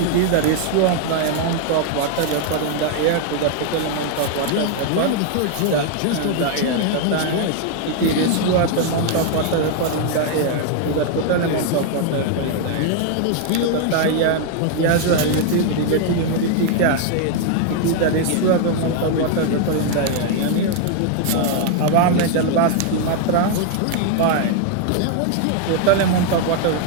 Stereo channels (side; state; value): both; different; correlation 0.00